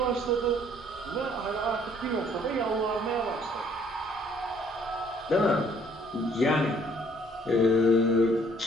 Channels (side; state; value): both; normal; correlation 0.62